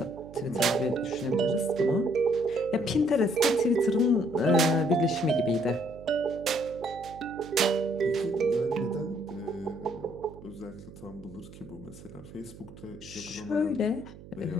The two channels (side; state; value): right; noise; hum, 17 dB below the sound